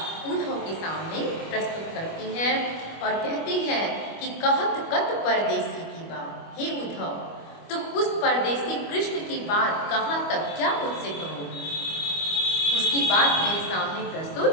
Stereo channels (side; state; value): right; late; 25 ms